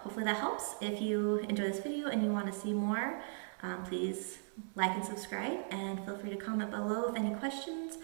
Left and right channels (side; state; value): left; silent; 53 dB below the other